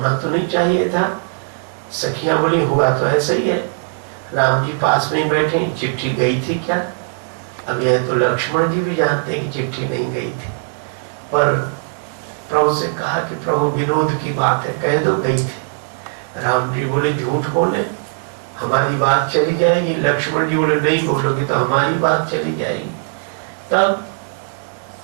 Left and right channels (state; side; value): silent; left; 67 dB below the other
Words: तो नहीं चाहिए था। सखियां बोली, हुआ तो ऐसा ही है, राम जी पास में ही बैठे, चिट्ठी गई थी क्या। अब यह तो लक्ष्मण जी भी जानते हैं कि चिट्ठी नहीं गई थी, पर प्रभु से कहा कि प्रभु विनोद की बात है, कह दो गई थी। राम जी बोले, झूठ बोले, हमारी बात चली जाएगी। लक्ष्मण जी बोले, नहीं बोलोगे तो हमारी बात चली जाएगी। तब